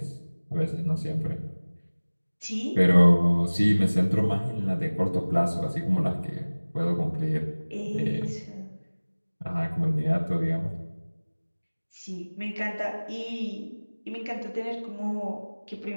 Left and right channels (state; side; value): inverted; both; correlation -1.00